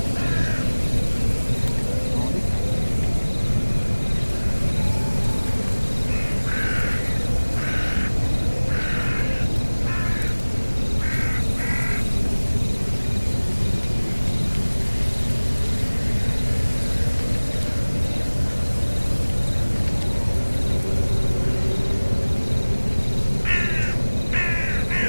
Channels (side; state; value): both; inverted; correlation -1.00